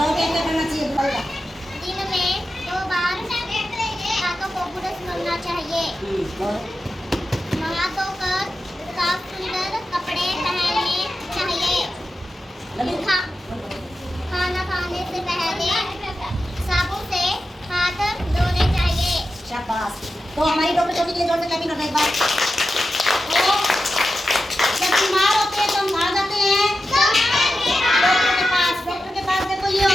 क्या क्या करना चाहिए? बताओ। दिन में 2 बार हाथों को ब्रश करना चाहिए। नहा धोकर साफ सुंदर कपड़े पहनने चाहिए। खाना खाने से पहले साबुन से हाथ धोने चाहिए। शाबाश। तो हमारी डॉक्टर छोटी के लिए जोर से क्लैपिंग करना एक बार। तो जब बीमार होते हैं तो हम कहाँ जाते हैं? डॉक्टर के पास। डॉक्टर के पास देखो ये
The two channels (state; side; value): normal; both; correlation 0.91